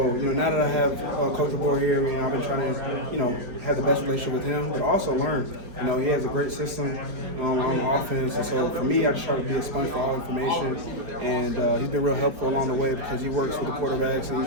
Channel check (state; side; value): late; left; 4.9 ms